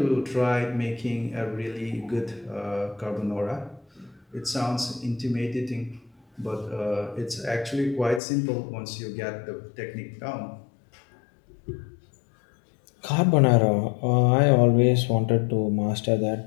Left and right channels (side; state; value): right; drops out; at 8.2 s